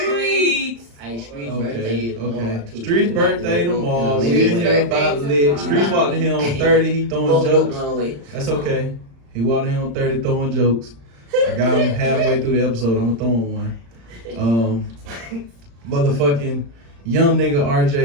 Hey, Street's birthday tomorrow, too. Street's birthday tomorrow. We in here about lit. Street's walked in here on 30. He throwing jokes. That's okay. He walked in here on 30 throwing jokes. I got him halfway through the episode. I'm gonna throw him one. Motherfucking young nigga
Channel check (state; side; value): late; left; 35 ms